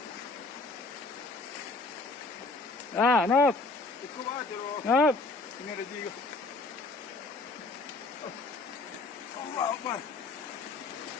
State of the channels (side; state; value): right; quieter; 3.6 dB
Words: Nop. Ikut aja loh. Nop. Ini ada juga. Allah Akbar.